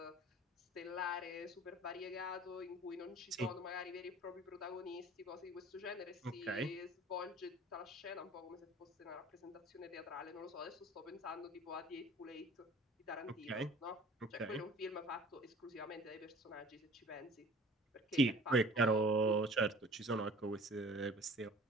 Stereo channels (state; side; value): normal; both; correlation 0.47